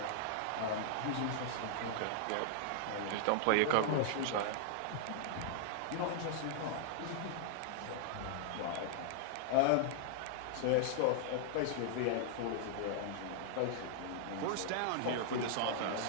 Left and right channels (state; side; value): different; both; correlation -0.01